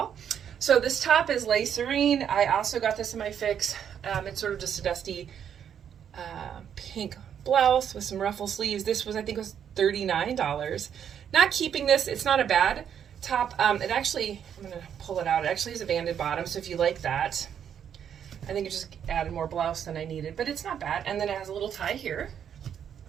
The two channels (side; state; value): left; quieter; 8.6 dB